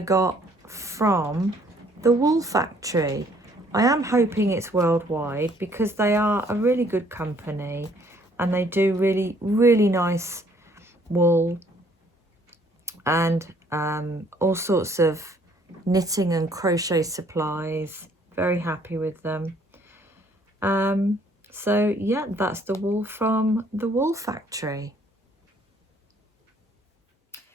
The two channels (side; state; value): both; normal; correlation 0.62